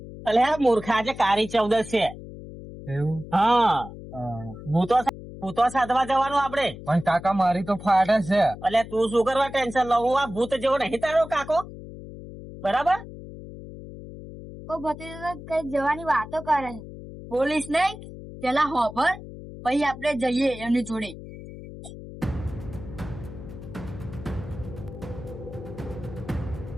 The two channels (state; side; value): noise; left; hum, 13 dB below the sound